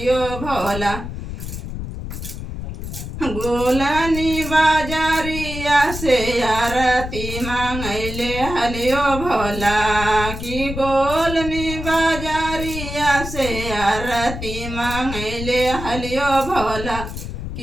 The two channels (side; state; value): left; noise; rumble, 7 dB below the sound